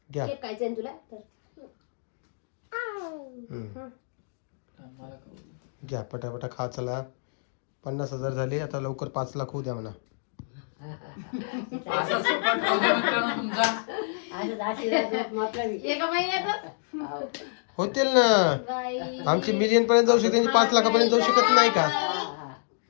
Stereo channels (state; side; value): silent; right; digital silence